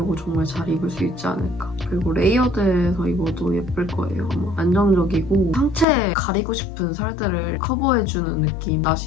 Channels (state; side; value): drops out; right; at 5.9 s